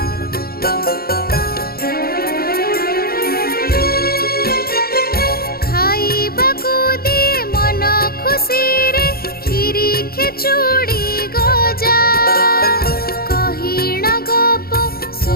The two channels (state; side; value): late; right; 0.44 ms